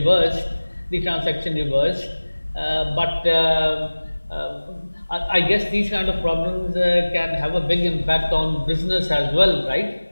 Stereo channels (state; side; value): inverted; both; correlation -1.00